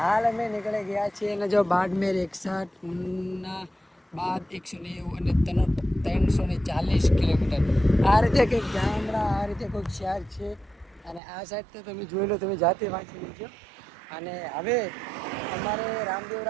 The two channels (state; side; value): drops out; left; at 11.2 s